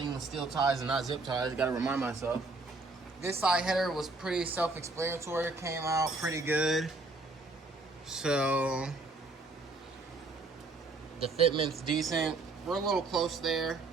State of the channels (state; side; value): quieter; left; 3.4 dB